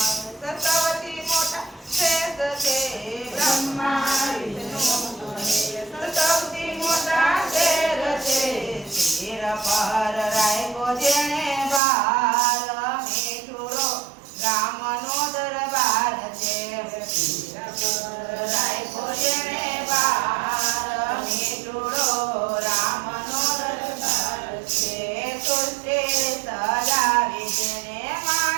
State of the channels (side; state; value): left; drops out; at 11.8 s